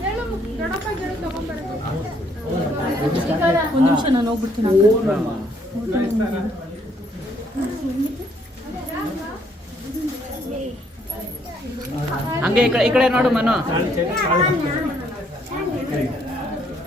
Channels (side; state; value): both; normal; correlation 0.68